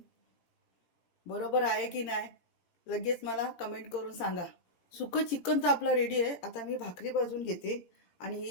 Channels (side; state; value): right; late; 17 ms